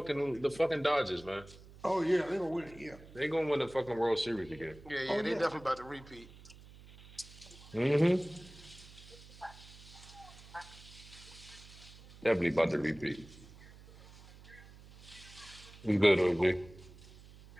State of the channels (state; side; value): noise; right; hum, 20 dB below the sound